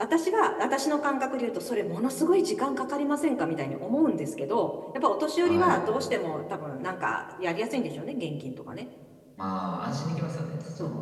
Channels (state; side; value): identical; both; correlation 1.00